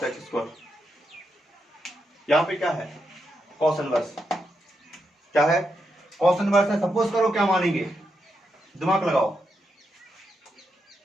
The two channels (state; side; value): normal; both; correlation 0.83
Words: x square, यहां पे क्या है, कॉस इनवर्स, क्या है, कॉस इनवर्स है। सपोज करो क्या मानेंगे, दिमाग लगाओ,